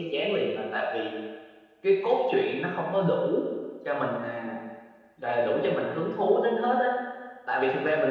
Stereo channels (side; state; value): both; identical; correlation 1.00